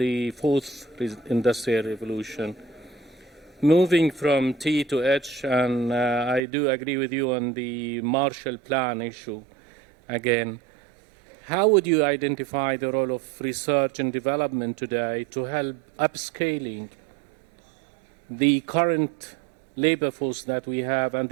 4th Industrial Revolution. Moving from T to H, and I do agree with you on the Marshall Plan issue again. How would you identify the role of research and development today to help upscaling the current labor force that we have and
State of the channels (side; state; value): left; drops out; at 6.4 s